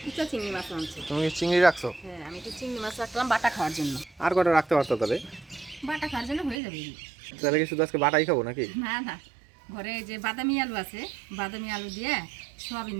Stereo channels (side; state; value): left; drops out; at 6.6 s